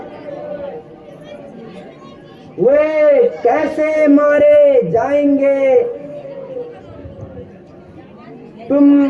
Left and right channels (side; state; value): both; identical; correlation 1.00